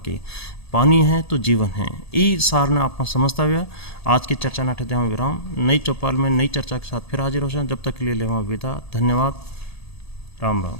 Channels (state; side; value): late; right; 1.8 ms